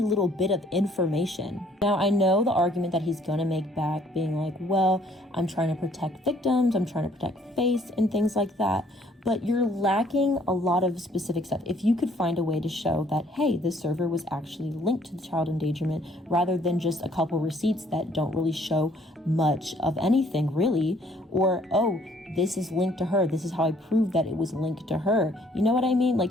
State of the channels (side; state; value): both; normal; correlation 0.62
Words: little bit of information? Now, I know the argument that he's going to make back, being like, well, I'm trying to protect victims, I'm trying to protect face and things like that, but you're lacking a lot of specific stuff. If you could find a way to show that, hey, this server was actually linked to the child endangerment, rather than just a couple receipts that don't really show much of anything really, or, oh, this is linked to her, this is how I prove that it was linked to her. You know what I mean?